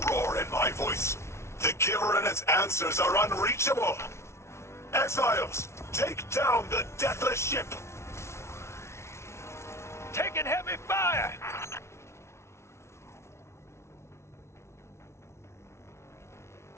roar in my voice. The Giver and its answers are unreachable. Exiles, take down the deathless ship. Taking heavy fire!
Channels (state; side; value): late; right; 0.13 ms